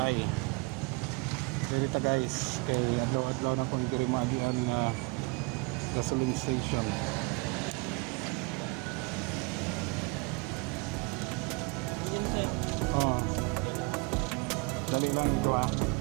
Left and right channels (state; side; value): quieter; left; 27.3 dB